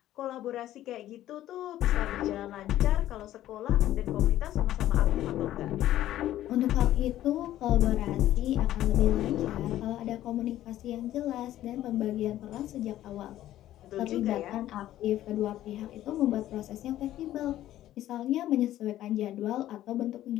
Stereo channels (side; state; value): right; quieter; 13.4 dB